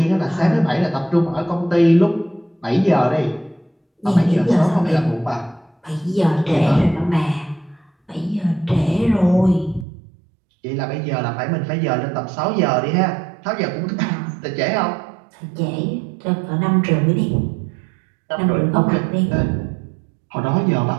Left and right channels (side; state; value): left; drops out; at 9.9 s